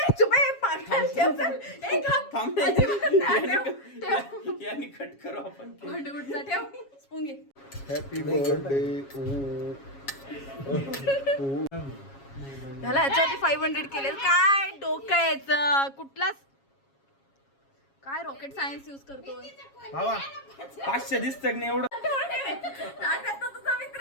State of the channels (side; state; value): right; late; 7.3 ms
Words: थांब यानी कट करू आपण. स्पून घे. Happy birthday. झाला याच्यावरती 500 केले. काय डोकं यायचं कुठलाच काय रॉकेट सायन्स युज करतोय बाबा 500 दिसतं नाही एवढं. तुझा मित्र